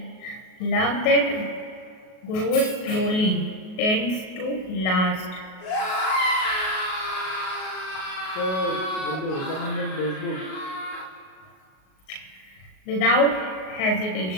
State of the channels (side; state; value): right; late; 38 ms